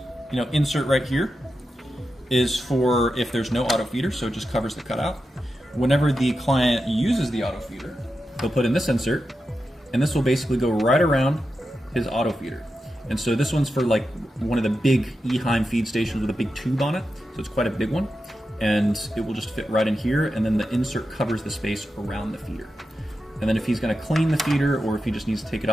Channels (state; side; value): normal; both; correlation 0.89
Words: insert right here is for if there's no auto feeder, so it just covers the cutout. Whenever the client uses the auto feeder, they'll put in this insert, and this will basically go right around his auto feeder. And so this one's for like one of the big Eheim feed stations with a big tube on it. So it's quite a big one. And it will just fit right in here. And then the insert covers the space around the feeder. And then if he's going to clean the feeder, or if he just needs to take it